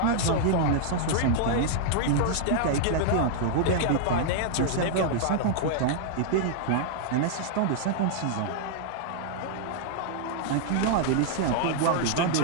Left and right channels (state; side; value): different; both; correlation -0.01